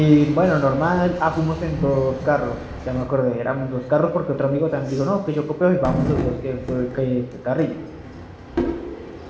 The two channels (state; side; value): identical; both; correlation 1.00